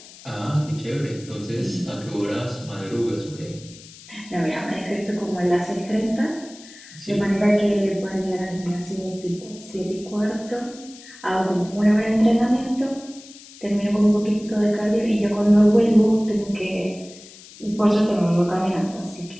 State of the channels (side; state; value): left; noise; hiss, 20 dB below the sound